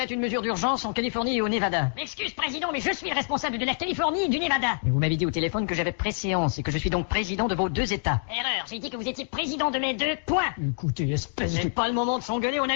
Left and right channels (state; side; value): silent; right; digital silence